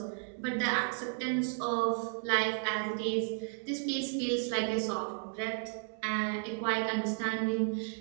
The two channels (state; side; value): silent; left; 55 dB below the other